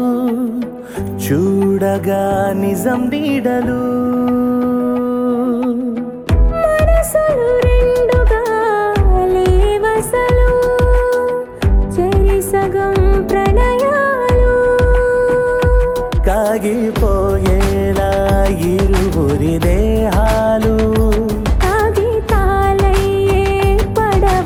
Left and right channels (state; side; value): identical; both; correlation 1.00